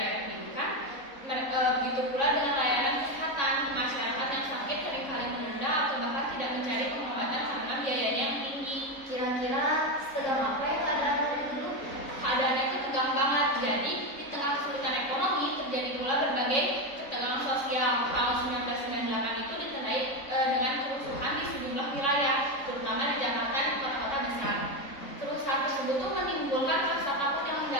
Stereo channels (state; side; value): late; right; 3.6 ms